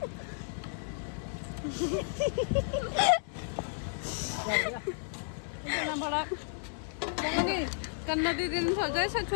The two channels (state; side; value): silent; right; 56 dB below the other